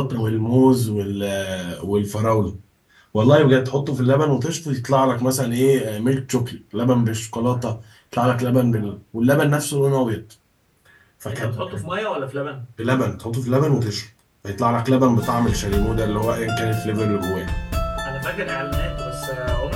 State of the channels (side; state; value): both; identical; correlation 1.00